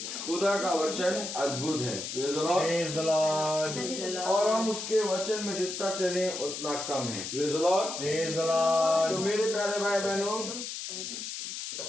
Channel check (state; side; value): noise; left; hiss, 6 dB below the sound